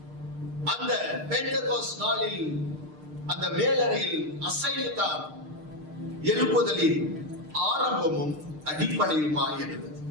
அந்த பெந்தகோஸ்ட் நாளில் அந்த மேலறையில் அசைவுதான் எழுப்புதலின் ஆரம்பமும் அடிப்படையுமாய் இருந்தது.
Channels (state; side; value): late; left; 6.6 ms